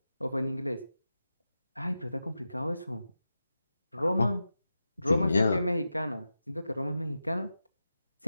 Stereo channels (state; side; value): inverted; both; correlation -0.92